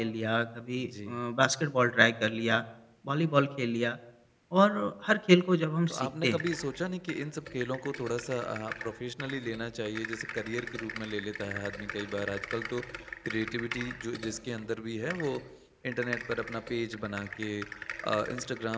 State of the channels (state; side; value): identical; both; correlation 1.00